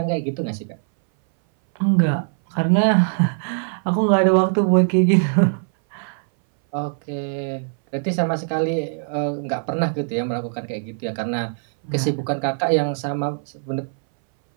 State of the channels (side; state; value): left; silent; 61 dB below the other